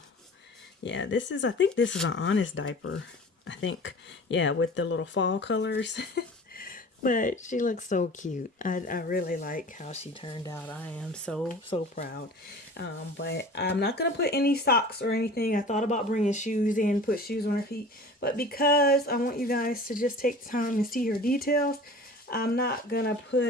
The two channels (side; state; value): both; normal; correlation 0.41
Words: yeah, I think this is an Honest diaper. I think, yeah, with the little fall colors. But she looks so cute. I really like how she turned out. I am so proud. But I'm not gonna put any socks or anything. I thought about bringing shoes in, put shoes on her feet, but because I want you guys to just take time and see her details, I'm not gonna